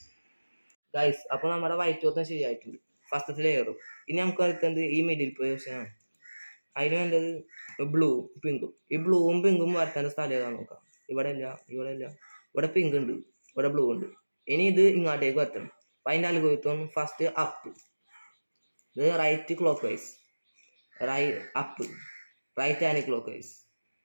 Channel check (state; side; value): inverted; both; correlation -1.00